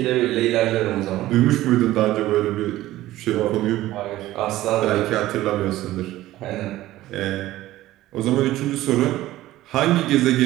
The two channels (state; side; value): quieter; left; 15.6 dB